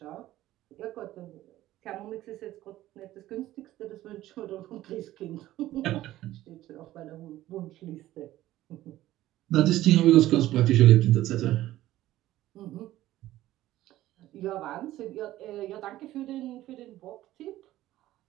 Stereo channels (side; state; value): left; quieter; 15.0 dB